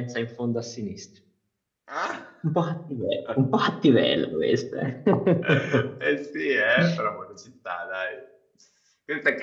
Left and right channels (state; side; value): identical; both; correlation 1.00